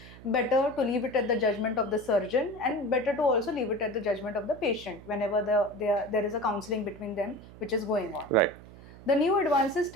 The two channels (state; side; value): noise; right; hum, 19 dB below the sound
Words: Better to leave it at the judgment of the surgeon, and better to also leave it at the judgment of the patient whenever there is a counseling between them which is going on. Right. The new advances